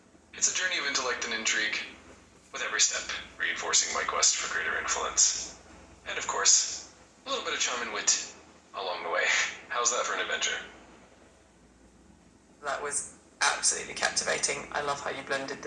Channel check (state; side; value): identical; both; correlation 1.00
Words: It's a journey of intellect and intrigue, with every step reinforcing my quest for greater influence. And of course, a little bit of charm and wit along the way. How's that for an adventure? That was absolutely captivating. I love how you blended